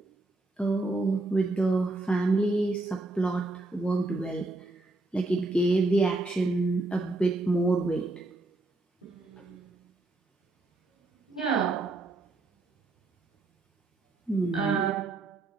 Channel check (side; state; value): left; quieter; 3.0 dB